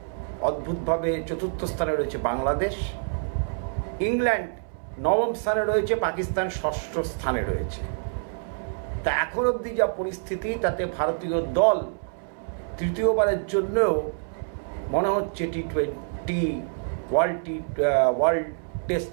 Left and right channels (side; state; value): left; silent; 61 dB below the other